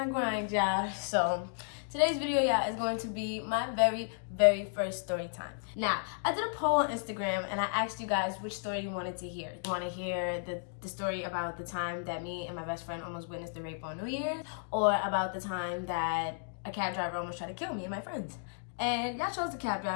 grind, y'all. So today's video, y'all, is going to be my very first story time. Now, I did a poll on Instagram and I asked you guys which story you wanted to hear. You want to hear the story about the time that me and my best friend almost witnessed the rape on New Year's, or about the time that a cab driver almost tried to kill me and my friends? And y'all chose the cab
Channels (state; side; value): silent; right; digital silence